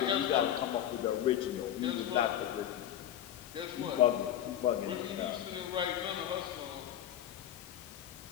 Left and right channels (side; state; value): right; quieter; 11.1 dB